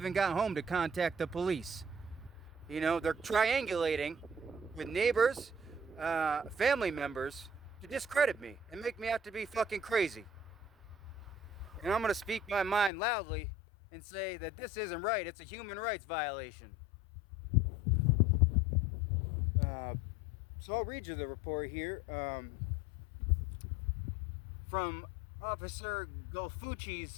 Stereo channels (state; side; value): drops out; right; at 12.9 s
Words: got home to contact the police. You know, they're triangulating with neighbors, family members, to discredit me and make me out to be fucking crazy. And I'm going to speak my mind loudly and say that this isn't right. It's a human rights violation. So I'll read you the report here from Officer